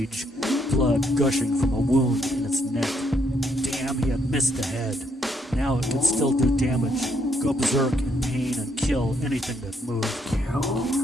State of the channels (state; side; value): normal; both; correlation 0.73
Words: blood gushing from a wound in its neck. Damn, he had missed the head. Now it could still do damage, go berserk in pain and kill anything that moved.